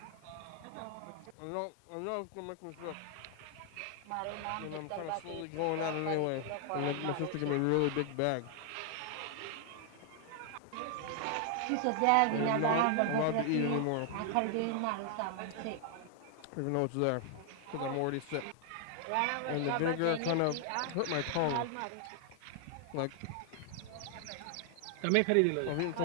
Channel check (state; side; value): different; both; correlation 0.00